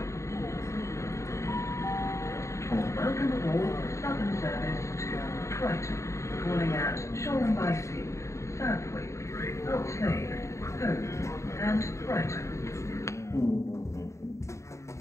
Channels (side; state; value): right; late; 0.14 ms